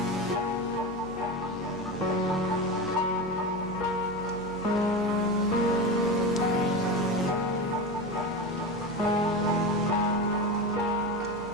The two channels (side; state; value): right; noise; hum, 18 dB below the sound